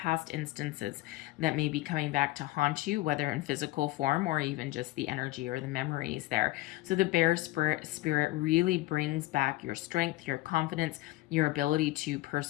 instances that may be coming back to haunt you, whether in physical form or even just the energy or the memories there. So the Bear Spirit really brings back your strength, your confidence, your ability to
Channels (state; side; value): quieter; right; 18.3 dB